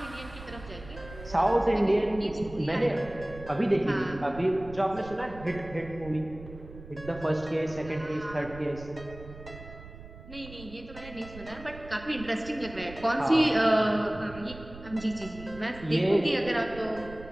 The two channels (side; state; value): right; noise; rumble, 16 dB below the sound